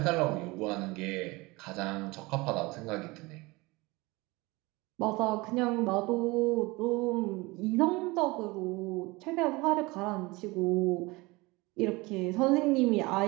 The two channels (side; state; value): left; quieter; 23.2 dB